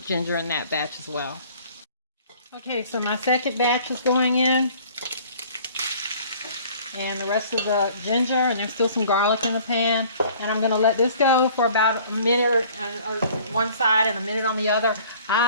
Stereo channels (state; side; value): inverted; both; correlation -0.52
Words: ginger in that batch as well. Okay, so my second batch is going in, and the rest of the ginger, and there's still some garlic in the pan. And I'm going to let this go for about a minute one side and a minute on the other.